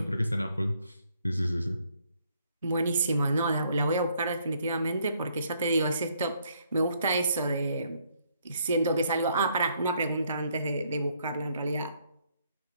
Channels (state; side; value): inverted; both; correlation -0.69